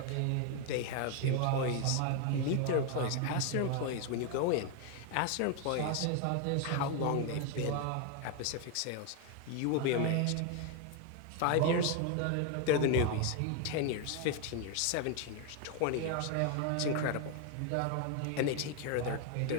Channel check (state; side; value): different; both; correlation 0.01